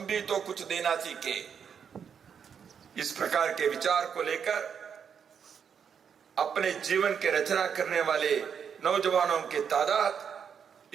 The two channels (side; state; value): left; quieter; 7.3 dB